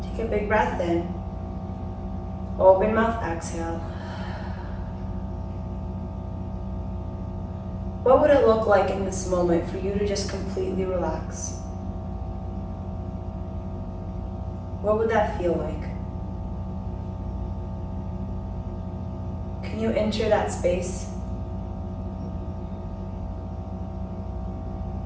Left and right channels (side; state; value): both; identical; correlation 1.00